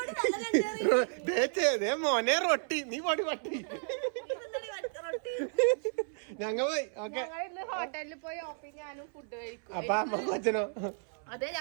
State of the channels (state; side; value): silent; left; 56 dB below the other